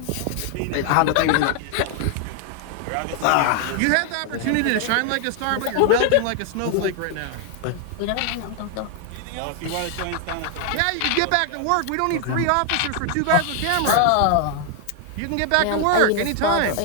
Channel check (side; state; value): both; different; correlation 0.00